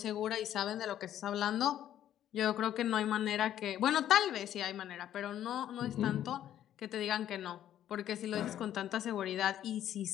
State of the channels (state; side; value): quieter; right; 11.3 dB